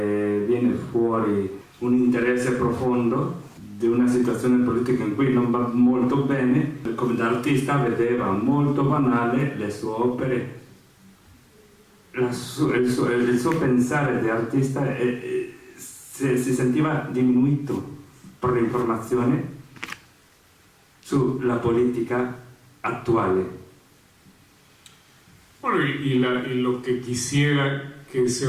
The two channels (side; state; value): both; identical; correlation 1.00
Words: fuori un interesse profondo di una situazione politica in cui non va molto bene, come da artista vedeva molto banale le sue opere, il suo pensare di artista si sentiva diminuito per l'informazione sulla politica actuales. Bueno, y lo que quisiera que se